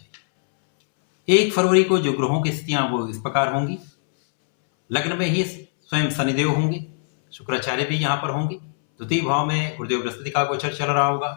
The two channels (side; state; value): right; silent; 64 dB below the other